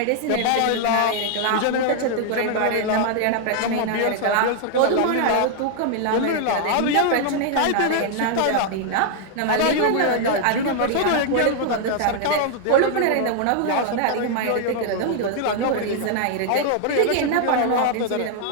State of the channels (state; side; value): different; both; correlation 0.00